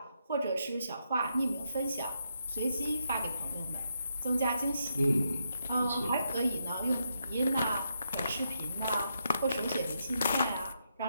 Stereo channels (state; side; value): inverted; both; correlation -0.81